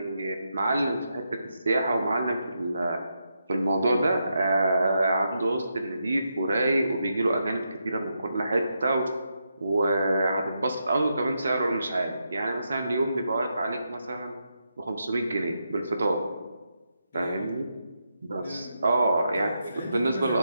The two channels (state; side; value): inverted; both; correlation -0.83